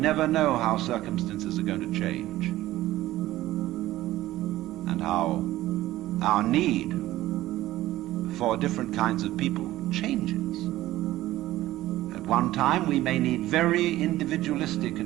never know how circumstances are going to change, and how our need for different kinds of people changes. At one time we may need very individualistic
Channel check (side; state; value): left; quieter; 15.7 dB